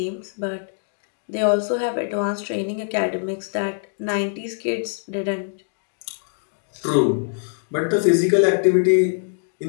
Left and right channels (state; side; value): silent; right; digital silence